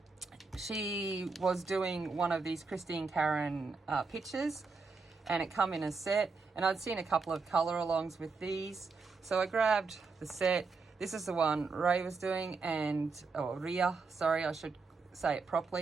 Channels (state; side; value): quieter; left; 4.4 dB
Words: She was doing one of these Christine Karen pictures, and it come in a set, and I'd seen a couple of color alongs with these, so I grabbed the set. This is the one Ray was doing, and Rea, sorry, I should say it